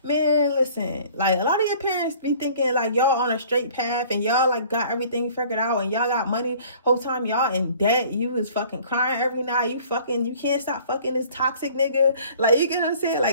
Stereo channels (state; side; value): inverted; both; correlation -0.52